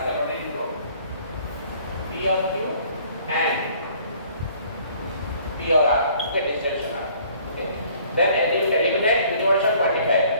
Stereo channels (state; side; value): inverted; both; correlation -0.57